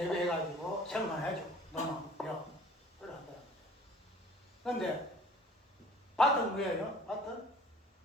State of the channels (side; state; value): both; normal; correlation 0.51